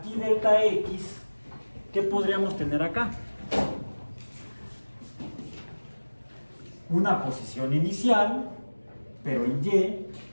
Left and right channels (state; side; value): inverted; both; correlation -1.00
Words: delta X, ¿qué podríamos tener acá? Una posición inicial, pero en Y,